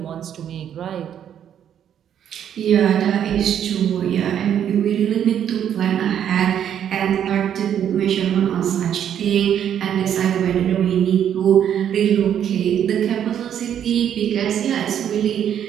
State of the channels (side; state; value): left; quieter; 9.5 dB